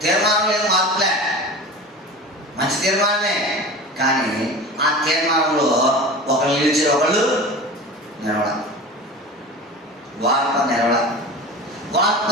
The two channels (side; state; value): both; normal; correlation 0.34